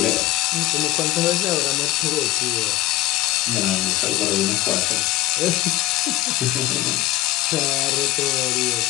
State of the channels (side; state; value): right; quieter; 16.8 dB